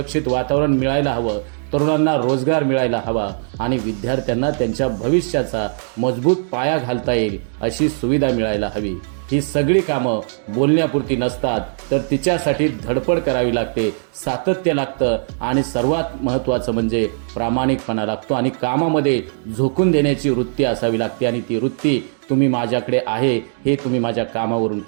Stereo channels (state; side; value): silent; left; digital silence